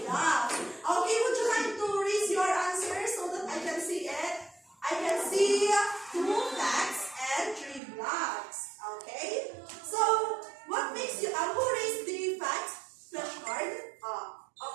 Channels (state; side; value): drops out; left; at 7.8 s